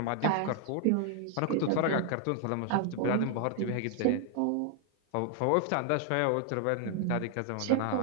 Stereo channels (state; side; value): different; both; correlation 0.00